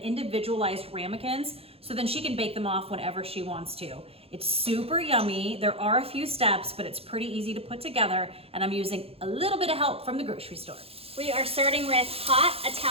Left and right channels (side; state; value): left; late; 0.28 ms